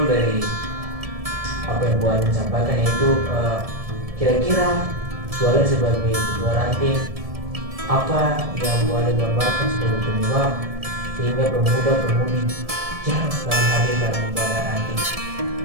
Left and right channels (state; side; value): late; left; 1.7 ms